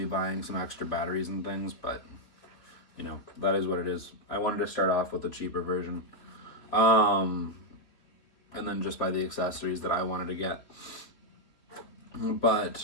buying some extra batteries and things, but that is what it is. I wanted to start off with the cheaper version. And then just buy the accessories that I wanted to get.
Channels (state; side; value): late; right; 3.4 ms